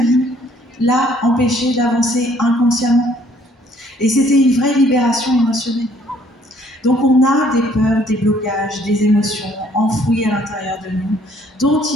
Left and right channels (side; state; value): both; normal; correlation 0.62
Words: l'a empêché d'avancer inconsciemment. Et c'était une vraie libération émotionnelle. Donc on a des peurs, des blocages, des émotions enfouies à l'intérieur de nous, dont